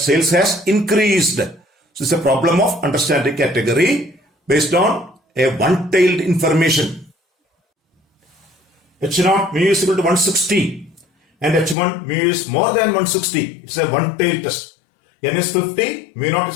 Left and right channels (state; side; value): drops out; right; at 11.8 s